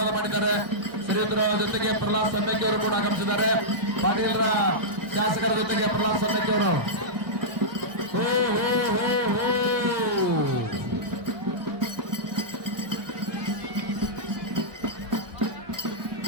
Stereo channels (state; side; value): late; left; 1.2 ms